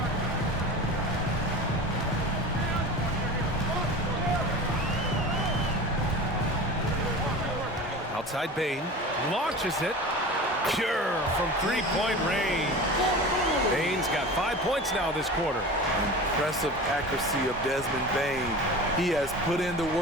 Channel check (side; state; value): both; normal; correlation 0.34